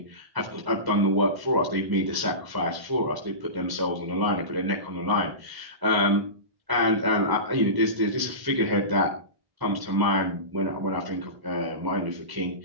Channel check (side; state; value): left; late; 1.1 ms